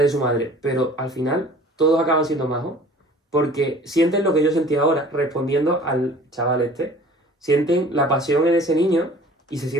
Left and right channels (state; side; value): normal; both; correlation 0.48